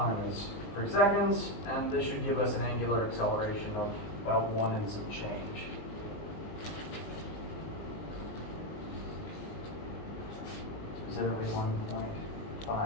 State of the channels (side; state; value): right; late; 19 ms